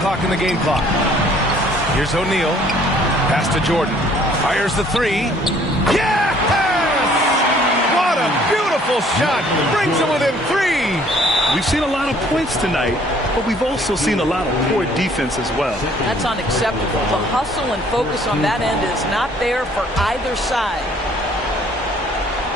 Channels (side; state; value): both; normal; correlation 0.59